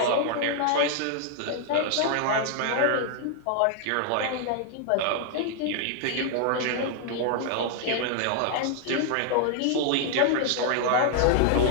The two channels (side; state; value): both; different; correlation 0.00